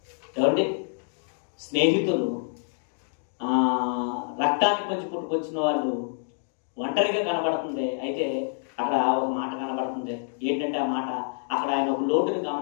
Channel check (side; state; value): right; silent; digital silence